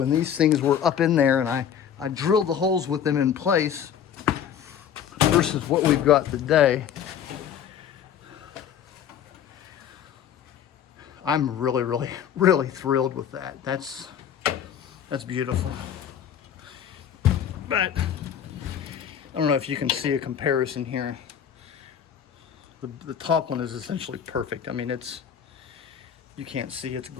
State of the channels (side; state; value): right; quieter; 8.8 dB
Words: these things were up in there and I drilled the holes with them in place versus what we've got today. I'm really thrilled with that. That's beautiful. But I don't know if you can see a comparison here. The top one is essentially perfect. I mean, you can't see, it's